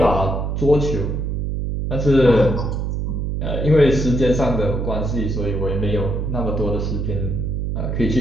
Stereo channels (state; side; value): noise; right; hum, 1 dB below the sound